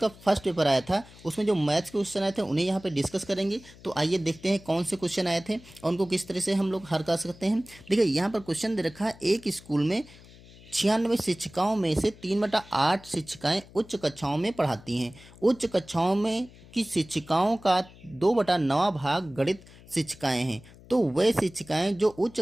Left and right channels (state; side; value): noise; left; hum, 22 dB below the sound